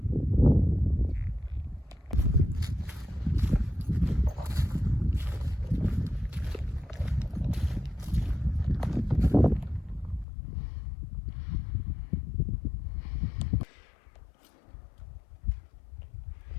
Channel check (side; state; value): right; drops out; at 10.2 s